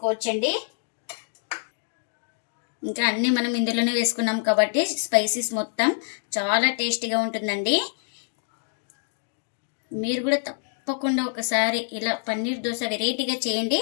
ఇంకా అన్నీ మనం ఇందులోనే వేసుకున్నాం కాబట్టి స్పైసెస్ మొత్తం చాలా టేస్టీగా ఉంటుందండి. మీరు కూడా తప్పకుండా ఒకసారి ఇలా పన్నీర్ దోశ వెరైటీగా చేయండి,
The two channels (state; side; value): silent; right; digital silence